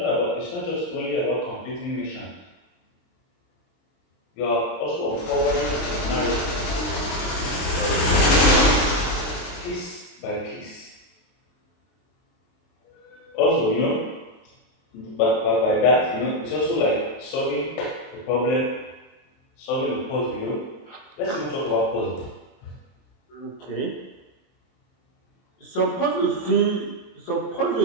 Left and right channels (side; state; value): right; late; 23 ms